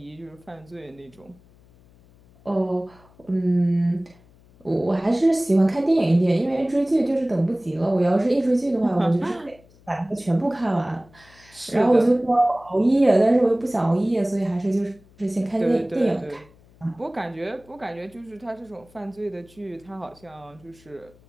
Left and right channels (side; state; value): left; noise; hum, 28 dB below the sound